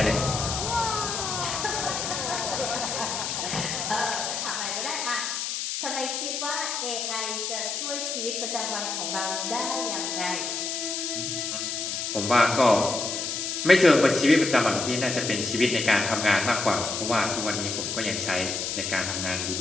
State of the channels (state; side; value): noise; left; hiss, 3 dB below the sound